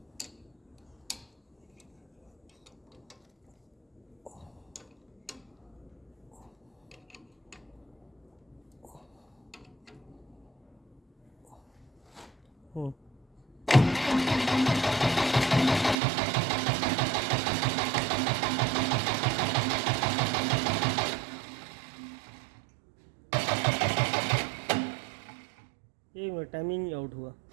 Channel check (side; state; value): left; drops out; at 16.0 s